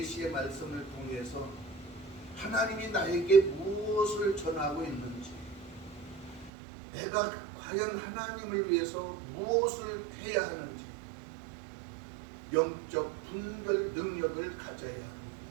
말씀을 통해서 하나님이 나에게 무엇을 전하고 있는지, 내가 과연 하나님을 위해서 무엇을 해야 하는지 영적 분별 능력을 가져야 합니다.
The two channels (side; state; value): left; drops out; at 6.5 s